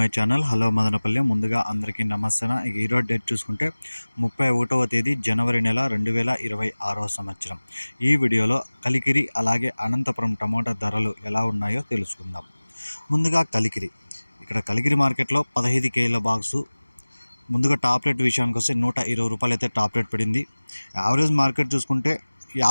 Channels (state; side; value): inverted; both; correlation -1.00